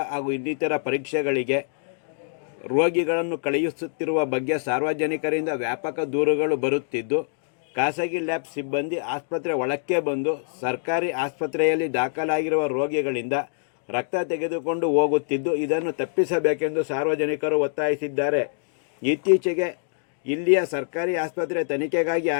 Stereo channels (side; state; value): right; silent; digital silence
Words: ಹಾಗೂ ಇನ್ನಿತರ ಪರೀಕ್ಷೆಗಳಿಗೆ ರೋಗಿಗಳನ್ನು ಕಳುಹಿಸುತ್ತಿರುವ ಬಗ್ಗೆ ಸಾರ್ವಜನಿಕರಿಂದ ವ್ಯಾಪಕ ದೂರುಗಳು ಬರುತ್ತಿದ್ದು, ಖಾಸಗಿ ಲ್ಯಾಬ್ ಸಿಬ್ಬಂದಿ ಆಸ್ಪತ್ರೆ ಒಳಕ್ಕೆ ಬಂದು ಸರ್ಕಾರಿ ಆಸ್ಪತ್ರೆಯಲ್ಲಿ ದಾಖಲಾಗಿರುವ ರೋಗಿಗಳಿಂದ ರಕ್ತ ತೆಗೆದುಕೊಂಡು ಹೋಗುತ್ತಿದ್ದು, ಇದನ್ನು ತಪ್ಪಿಸಬೇಕೆಂದು ಸಾರ್ವಜನಿಕರು ಒತ್ತಾಯಿಸಿದ್ದಾರೆ. ಇತ್ತೀಚೆಗೆ ಇಲ್ಲಿಯ ಸರ್ಕಾರಿ ಆಸ್ಪತ್ರೆ ತನಿಖೆಗಾಗಿ